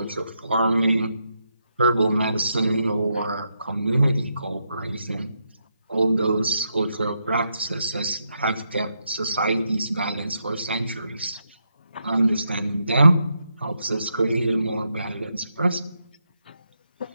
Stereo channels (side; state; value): both; inverted; correlation -0.81